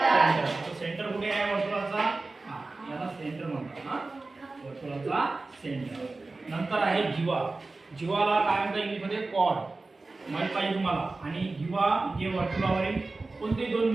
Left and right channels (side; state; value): left; quieter; 3.5 dB